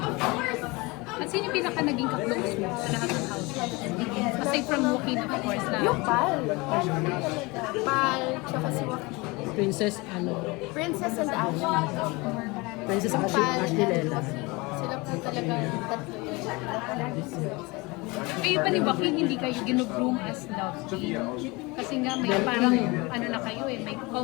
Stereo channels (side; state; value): right; quieter; 24.9 dB